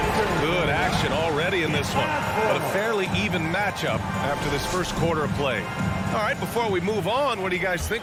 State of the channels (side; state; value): both; identical; correlation 1.00